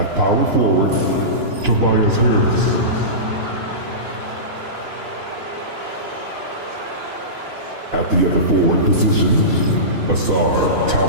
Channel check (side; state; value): left; late; 2.9 ms